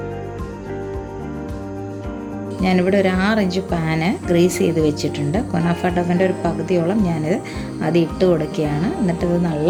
ഞാനിവിടെ ഒരു 6 ഇഞ്ച് പാന് ഗ്രീസ് ചെയ്ത് വെച്ചിട്ടുണ്ട്. കുനാഫ ഡവിൻ്റെ ഒരു പകുതിയോളം ഞാനിത് അത് ഇട്ട് കൊടുക്കുകയാണ്. എന്നിട്ട് ഇത്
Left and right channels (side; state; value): both; identical; correlation 1.00